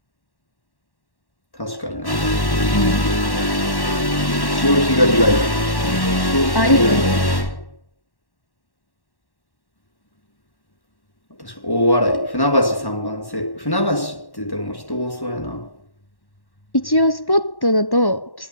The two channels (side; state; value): right; late; 1.1 ms